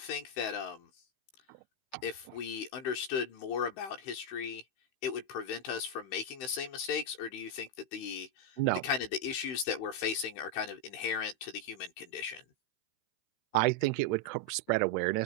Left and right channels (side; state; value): right; late; 16 ms